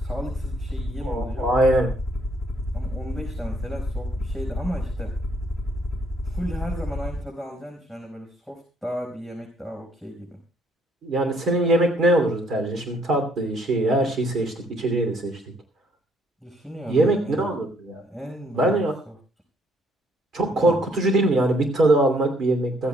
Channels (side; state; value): both; normal; correlation 0.67